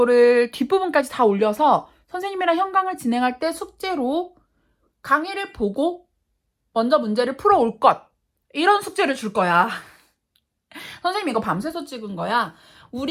뒷부분까지 다 올려서 선생님이랑 현강을 진행할 때 숙제로 강의를 보고 먼저 문제를 풀어올 것. 이런 숙제를 줄 거야. 선생님 이거 밤새서 찍은 거야.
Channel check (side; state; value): both; identical; correlation 1.00